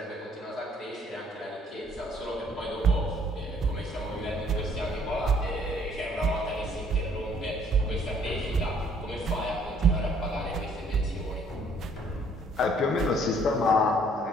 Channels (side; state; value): both; normal; correlation 0.62